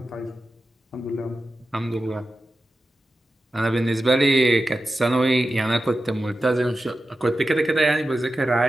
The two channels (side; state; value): both; normal; correlation 0.92